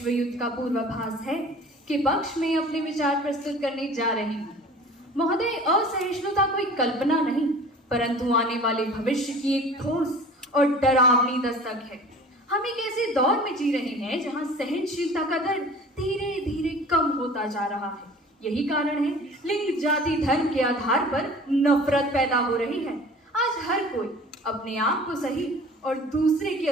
युद्ध का पूर्वाभास है के पक्ष में अपने विचार प्रस्तुत करने जा रही हूँ। महोदय, असहिष्णुता कोई कल्पना नहीं परंतु आने वाले भविष्य की एक ठोस और डरावनी दस्तक है। हम एक ऐसे दौर में जी रहे हैं जहां सहनशीलता का दर धीरे धीरे कम होता जा रहा है। यही कारण है लिंग, जाति, धर्म के आधार पर नफरत पैदा हो रही है। आज हर कोई अपने आप को सही और दूसरे के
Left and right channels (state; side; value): normal; both; correlation 0.44